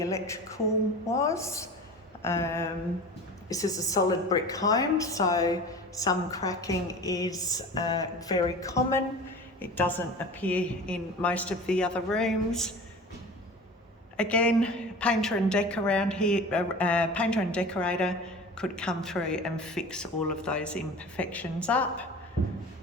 electrical was. This is a solid brick home, so some cracking is very common. It doesn't appear in most of the other rooms. Again, painter and decorator could come through and fix all of those imperfections up.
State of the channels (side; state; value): both; normal; correlation 0.37